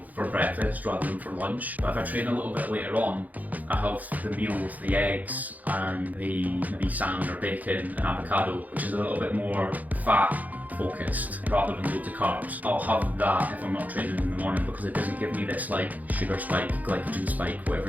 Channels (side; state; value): left; late; 0.079 ms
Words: for breakfast rather than for lunch. But if I train a little bit later on, I have the meal with the eggs and the maybe salmon or bacon and avocado, which is a little bit more fat focused rather than loads of carbs. I'll have that if I'm not training in the morning, because it doesn't give me this like sugar spike, glycogen spike, whatever